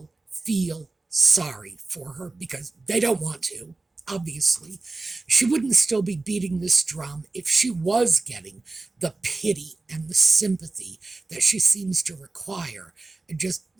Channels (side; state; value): left; quieter; 3.4 dB